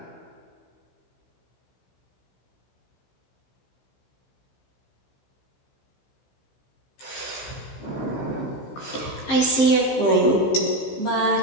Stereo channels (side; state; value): right; late; 15 ms